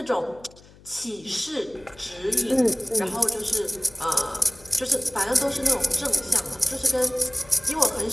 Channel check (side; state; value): left; noise; hum, 24 dB below the sound